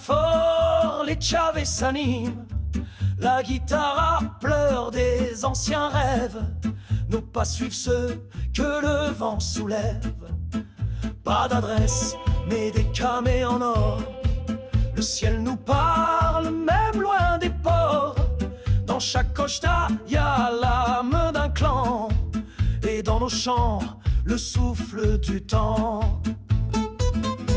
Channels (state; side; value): identical; both; correlation 1.00